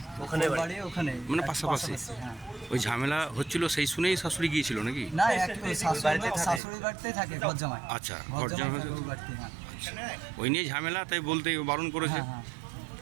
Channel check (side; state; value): left; drops out; at 6.6 s